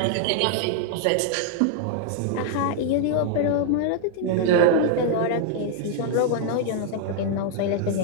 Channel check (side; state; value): both; different; correlation 0.00